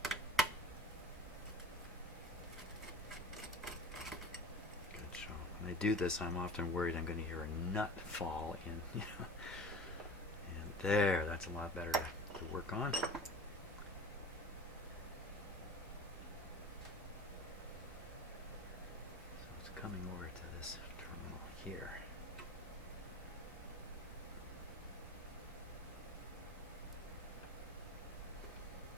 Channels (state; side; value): normal; both; correlation 0.37